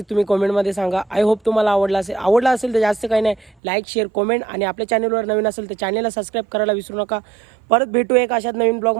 तुम्ही कमेंटमध्ये सांगा. आय होप तुम्हाला आवडला असेल तर जास्त काही नाही, लाईक शेअर कमेंट आणि आपल्या चॅनलवर नवीन असेल तर चॅनलला सबस्क्राईब करायला विसरू नका. परत भेटू एक अशाच नवीन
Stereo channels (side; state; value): left; drops out; at 3.6 s